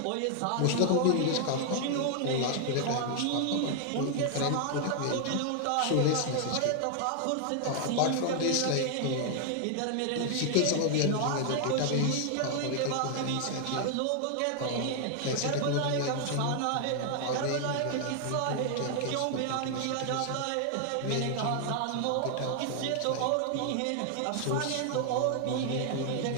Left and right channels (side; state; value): both; different; correlation 0.00